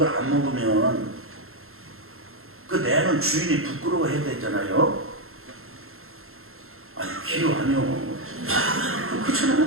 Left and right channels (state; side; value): late; left; 0.62 ms